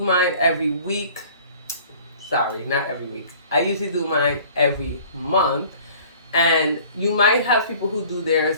every week. Sorry, not every week. I usually do mine every month. And you might have people who do theirs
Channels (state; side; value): inverted; both; correlation -0.50